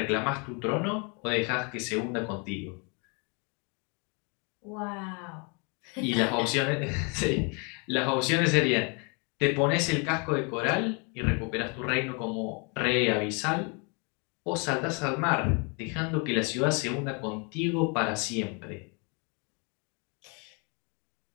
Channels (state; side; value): quieter; right; 33.9 dB